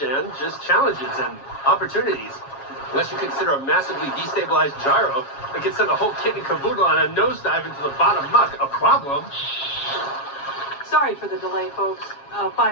Just challenges and opportunities. Unless you consider a massively destabilized gyro that could send a whole kit and caboodle on a nosedive into the bottom muck a problem. Sorry for the delay, folks.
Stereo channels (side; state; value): right; late; 7.3 ms